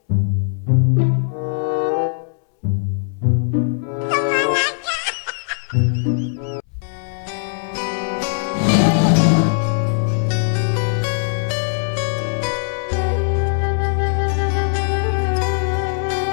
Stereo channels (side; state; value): right; silent; 66 dB below the other